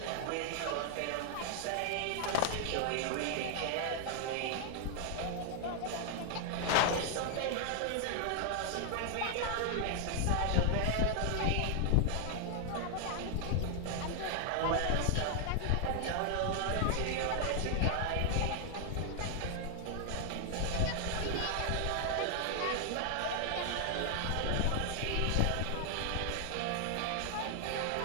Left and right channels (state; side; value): different; both; correlation 0.00